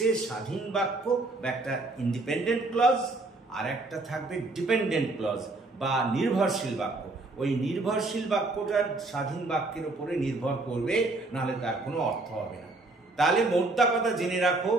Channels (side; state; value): left; quieter; 3.1 dB